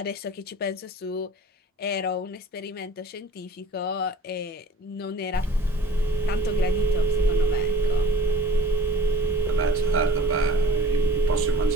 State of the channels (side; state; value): both; normal; correlation 0.47